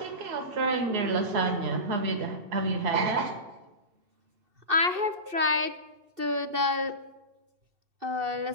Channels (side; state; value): left; late; 2.7 ms